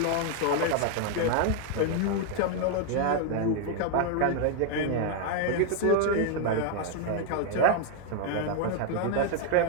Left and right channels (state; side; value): different; both; correlation 0.00